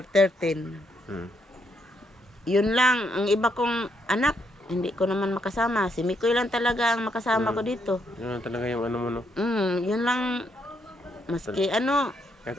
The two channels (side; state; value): both; normal; correlation 0.76